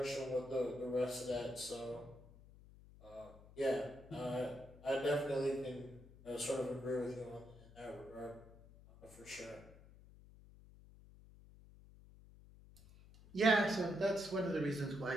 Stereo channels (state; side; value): noise; left; hum, 21 dB below the sound